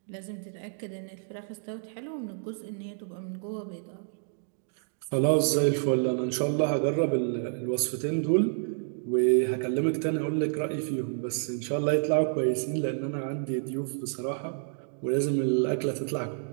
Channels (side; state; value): left; silent; digital silence